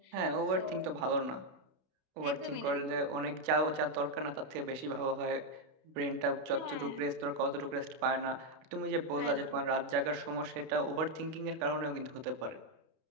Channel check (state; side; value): late; left; 32 ms